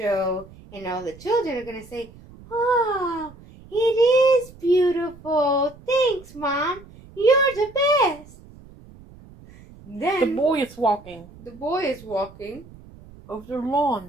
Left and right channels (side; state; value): right; noise; rumble, 21 dB below the sound